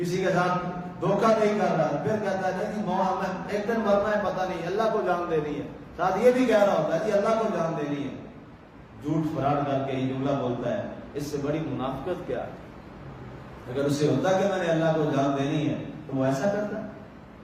کے ساتھ دھوکہ نہیں کر رہا، پھر کہتا ہے جی ہمیں ایک دن مرنا ہے، پتہ نہیں اللہ کو جان دینی ہے، ساتھ یہ بھی کہہ رہا ہوتا ہے جی اللہ کو جان دینی ہے، جھوٹ فراڈ کر کے یہ جملہ بولتا ہے۔ اس سے بڑی منافقت کیا ہے؟ اگر اس سے ہوتا کہ میں نے اللہ کو جان دینی ہے تو وہ ایسا کرتا۔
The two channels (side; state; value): both; identical; correlation 1.00